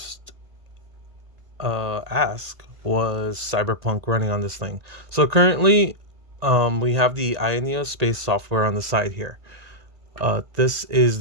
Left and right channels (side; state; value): left; late; 1.8 ms